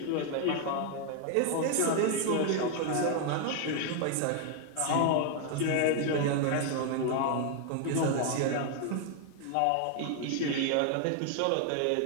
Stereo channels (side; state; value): both; different; correlation 0.00